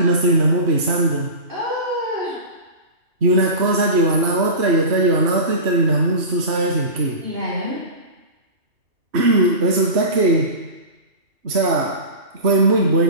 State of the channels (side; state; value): left; late; 3.0 ms